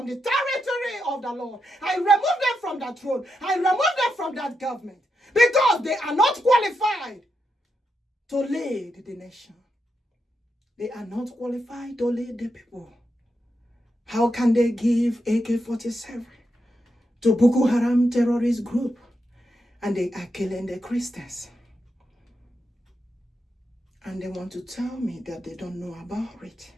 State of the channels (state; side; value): normal; both; correlation 0.85